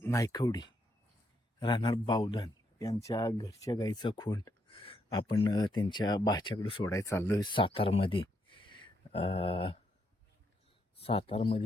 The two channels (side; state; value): both; normal; correlation 0.77